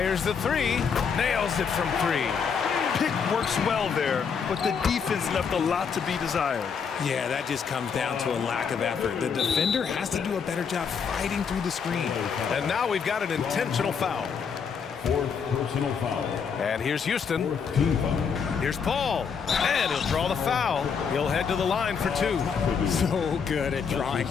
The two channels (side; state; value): right; quieter; 6.4 dB